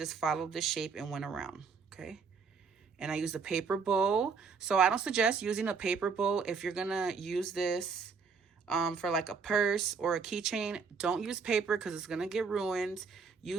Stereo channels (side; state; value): left; quieter; 5.4 dB